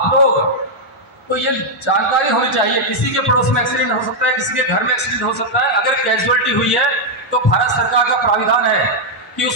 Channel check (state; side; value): normal; both; correlation -0.03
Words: लोग को ये जानकारी होनी चाहिए, किसी के पड़ोस में एक्सीडेंट हो सकता है, किसी के घर में एक्सीडेंट हो सकता है। अगर कैजुअलिटी हुई है तो भारत सरकार का प्राविधान है कि